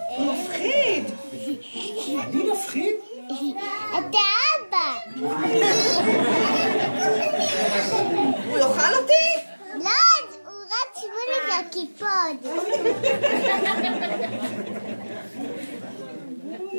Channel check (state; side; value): inverted; both; correlation -1.00